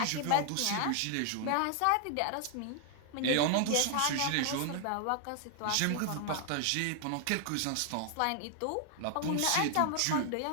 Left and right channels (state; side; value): different; both; correlation 0.00